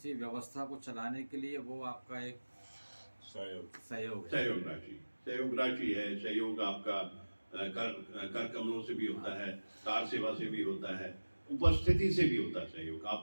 व्यवस्था को चलाने के लिए वो आपका एक सहयोग राशि है। सहयोग आपका कर कमलों से भी होता है, कार सेवा से भी होता है, उपस्थिति से भी होता है सहयोग।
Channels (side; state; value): both; inverted; correlation -1.00